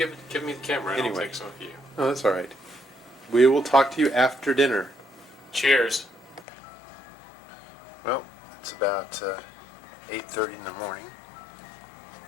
me the camera and Anyway. I'll take some of you. Oh, that's all right. We will talk to you after dinner. Cheers. Well, it's about 8:30 in the morning.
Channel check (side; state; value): right; drops out; at 6.5 s